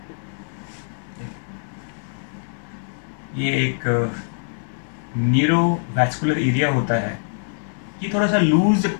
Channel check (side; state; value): right; silent; 63 dB below the other